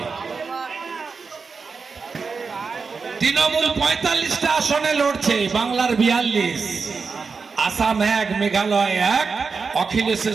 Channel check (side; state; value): left; quieter; 4.9 dB